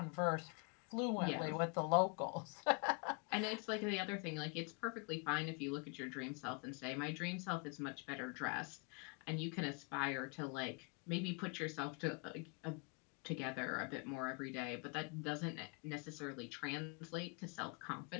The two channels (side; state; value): right; quieter; 33.1 dB